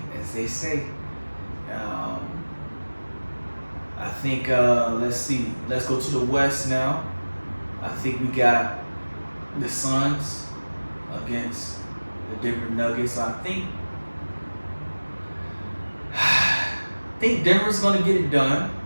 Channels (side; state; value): both; inverted; correlation -1.00